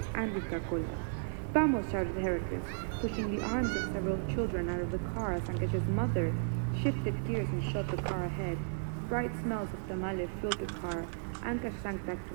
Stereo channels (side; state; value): left; silent; digital silence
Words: and Coca-Cola. Vamos, shouted Heracles, pushing the arms of several children out of the car as Ankesh's mother shifted gears and shot the car ahead. Bright smells of tamale filled the car. Ankesh sank back